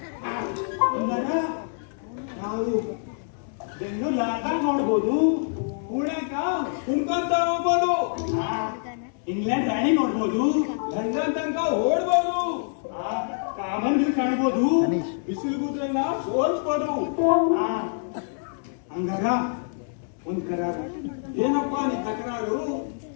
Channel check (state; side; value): silent; right; 61 dB below the other